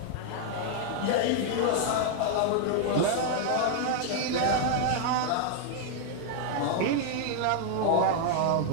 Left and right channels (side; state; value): both; different; correlation 0.00